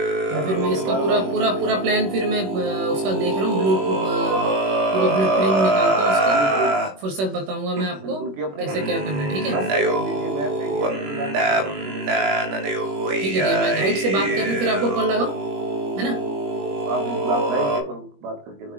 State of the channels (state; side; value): late; left; 21 ms